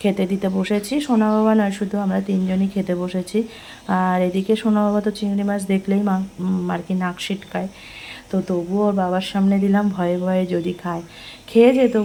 খেতে দিতে বসেছি। সোনা বাবা নয়, শুধু আমরা তিনজনই খেতে বসেছি। আর এদিকে সোনা বাবা তো চিংড়ি মাছ দেখলেই আর কি নাক সিটকায়। তো তবুও ওর বাবার সামনে দিলাম, ভয়ে ভয়ে যদি খায়। খেয়েছে,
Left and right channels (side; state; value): both; identical; correlation 1.00